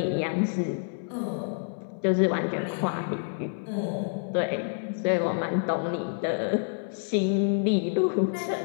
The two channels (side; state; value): right; silent; 59 dB below the other